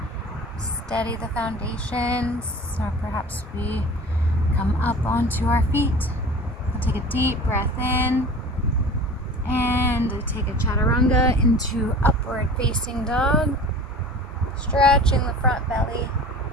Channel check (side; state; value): both; normal; correlation 0.40